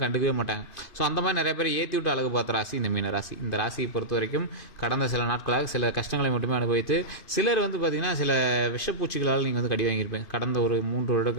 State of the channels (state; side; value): late; right; 2.5 ms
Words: கண்டுக்கவே மாட்டாங்க. ஸோ அந்த மாதிரி நிறைய பேர் ஏற்றி விட்டு அழகு பார்த்த ராசி இந்த மீன ராசி. இந்த ராசியை பொறுத்த வரைக்கும் கடந்த சில நாட்களாக சில கஷ்டங்களை மட்டுமே அனுபவித்து, சிலர் பார்த்தீங்கன்னா சில விஷப்பூச்சிகளால் நீங்கள் கடி வாங்கியிருப்பீங்க கடந்த ஒரு 3 வருட